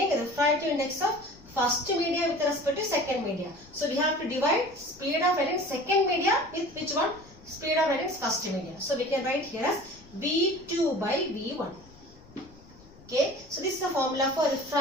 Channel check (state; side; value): noise; left; rumble, 23 dB below the sound